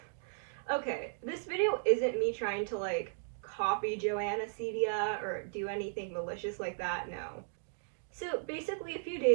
Okay, this video isn't me trying to like copy Joana Ceddia or do anything malicious like that, no. So basically a few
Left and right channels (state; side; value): silent; left; digital silence